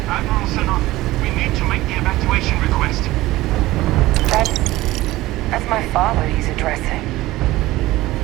Admiral Senna, we need to make the evacuation request. That's my father he's addressing.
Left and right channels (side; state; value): left; quieter; 17.6 dB